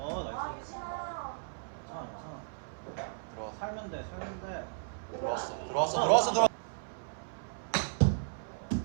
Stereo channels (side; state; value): left; silent; 55 dB below the other